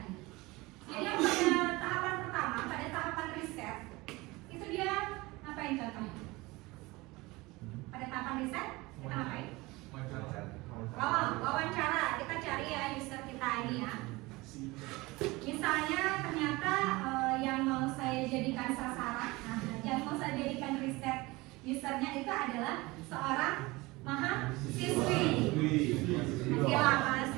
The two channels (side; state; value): left; quieter; 22.1 dB